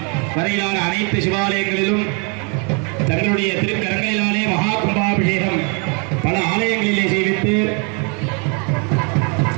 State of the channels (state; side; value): quieter; left; 35.2 dB